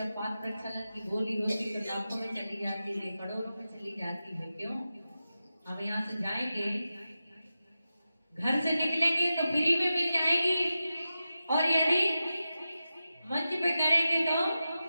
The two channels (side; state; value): both; inverted; correlation -0.92